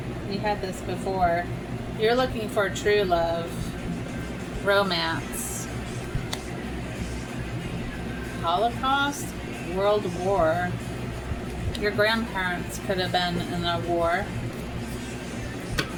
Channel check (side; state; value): both; identical; correlation 1.00